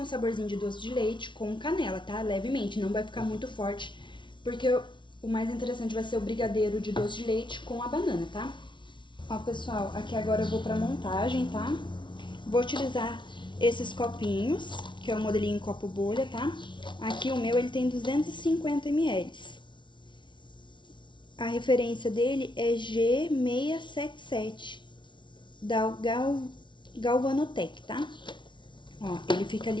saborzinho de doce de leite com canela, tá? Levemente, não vai ficar muito forte, porque o mais interessante vai ser o brigadeiro de doce de leite com a banana, tá? Ó, pessoal, aqui agora eu vou pra montagem, tá? Vou utilizar esses copinhos, que é o modelinho copo bolha, tá? Aqui o meu, ele tem 250 ml. A referência dele é G677, da Galvanotec, tá? Ó, ele fica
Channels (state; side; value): late; right; 0.24 ms